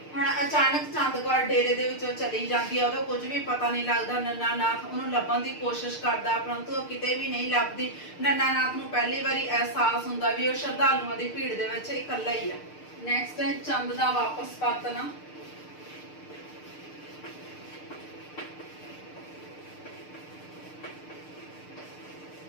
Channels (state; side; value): late; right; 6.6 ms